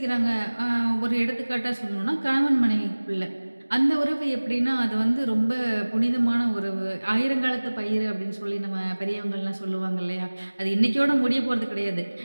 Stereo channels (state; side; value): inverted; both; correlation -1.00